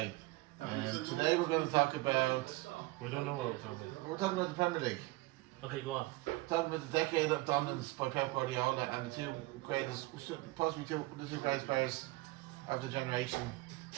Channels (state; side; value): quieter; left; 20.7 dB